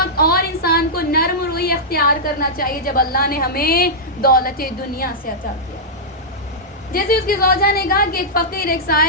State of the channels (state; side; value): normal; both; correlation -0.11